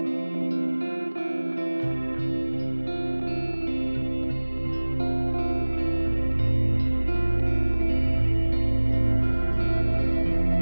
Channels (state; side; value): inverted; both; correlation -1.00